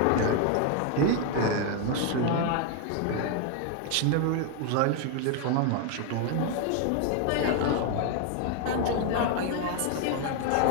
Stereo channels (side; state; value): both; different; correlation 0.00